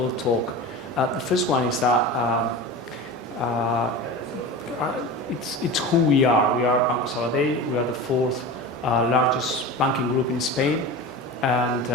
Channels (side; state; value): both; normal; correlation 0.30